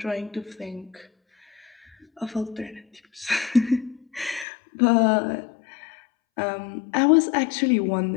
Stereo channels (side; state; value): right; drops out; at 4.5 s